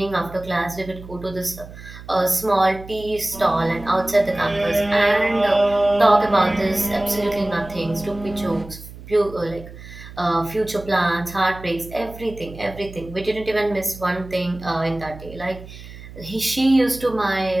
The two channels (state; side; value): noise; right; hum, 16 dB below the sound